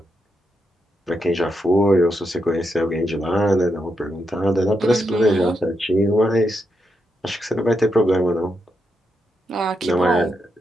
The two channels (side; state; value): both; normal; correlation 0.82